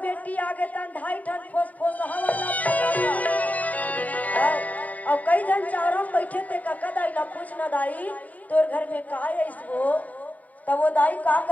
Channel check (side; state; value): right; late; 0.074 ms